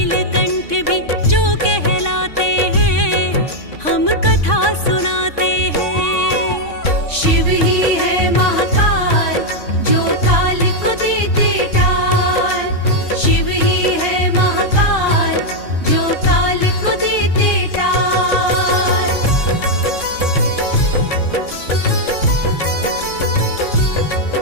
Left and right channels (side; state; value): right; late; 3.6 ms